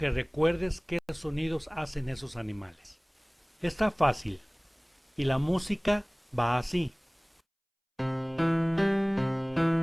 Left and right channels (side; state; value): both; identical; correlation 1.00